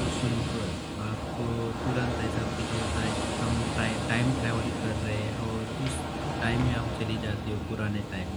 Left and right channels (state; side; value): identical; both; correlation 1.00